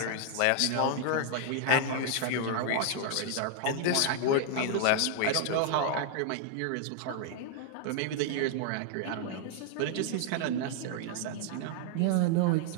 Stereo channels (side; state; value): both; different; correlation 0.00